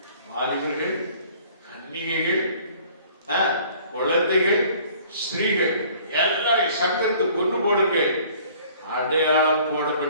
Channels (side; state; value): both; inverted; correlation -0.53